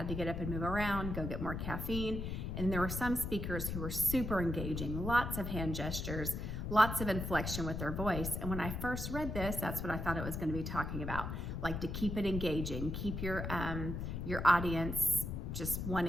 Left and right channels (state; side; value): noise; left; rumble, 4 dB below the sound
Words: to get up and move around, go get more caffeine. And there were some speakers who were super engaging, lots of hand gestures, lots of inflection with their voice. And when I first read this, that's what I thought it was going to be talking about, like to keep it engaging, keep your audience just